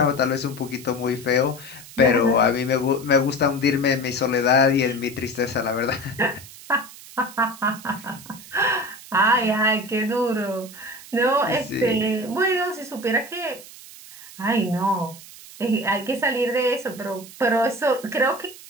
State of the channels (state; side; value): noise; right; hiss, 17 dB below the sound